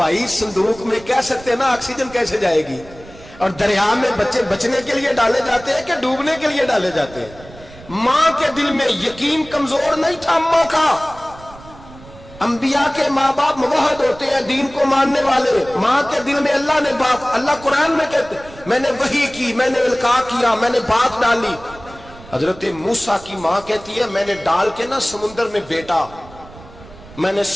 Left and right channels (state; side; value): noise; right; rumble, 20 dB below the sound